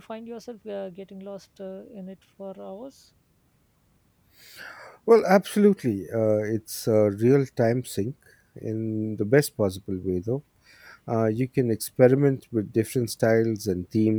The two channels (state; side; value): identical; both; correlation 1.00